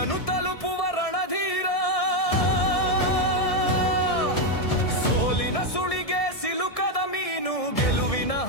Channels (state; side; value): late; right; 1.6 ms